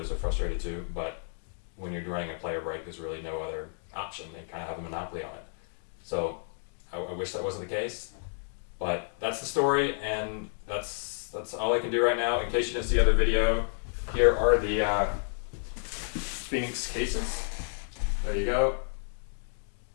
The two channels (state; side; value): silent; right; digital silence